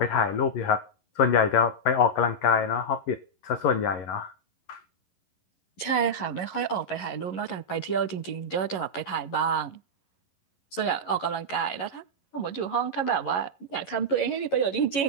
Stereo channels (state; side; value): late; right; 11 ms